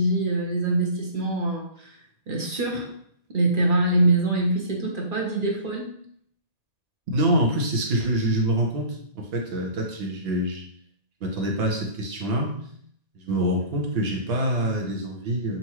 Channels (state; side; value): late; left; 1.8 ms